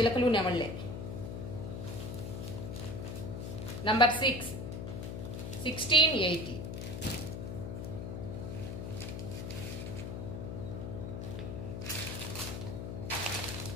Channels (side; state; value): left; noise; hum, 5 dB below the sound